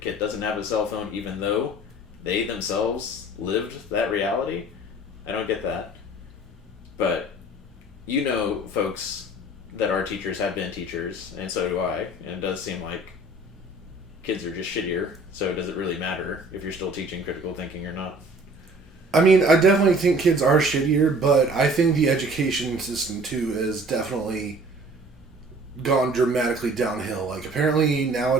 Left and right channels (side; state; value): both; normal; correlation 0.50